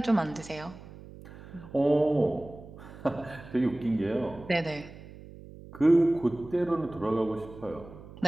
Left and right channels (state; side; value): noise; right; hum, 17 dB below the sound